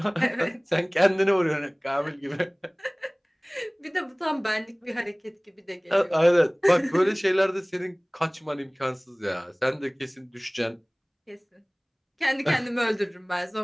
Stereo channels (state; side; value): identical; both; correlation 1.00